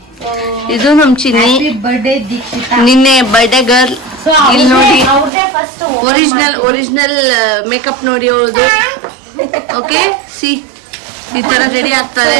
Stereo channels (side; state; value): left; drops out; at 5.3 s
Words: ಇದು ನಮ್ ಚಿನ್ನಿ ಬರ್ಡೇ ದೀಕ್ಷಿತ. ನಿನ್ನೆ ಬರ್ಡೇ ಗರ್ಲ್. ಇಲ್ಲಿ ನೋಡಿ ಅವ್ರದೇ ಫಸ್ಟ್ ಒರಿಜಿನಲ್ ಮೇಕಪ್ ನೋಡಿ ಅವ್ರದ್ದು. ಓಕೆ ಸಿ ಈ ತರ ರೆಡಿ ಆಗ್ತಾರೆ